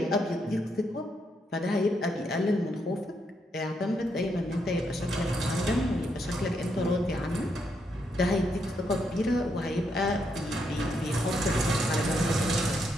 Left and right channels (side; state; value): both; normal; correlation 0.78